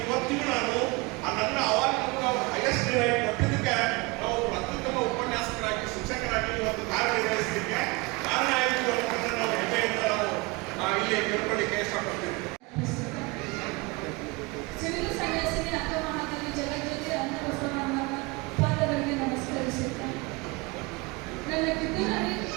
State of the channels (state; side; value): quieter; left; 25.5 dB